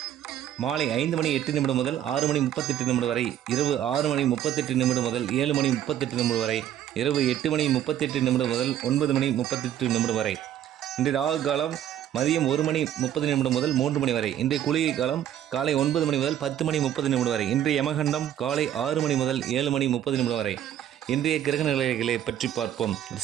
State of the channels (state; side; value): quieter; left; 11.0 dB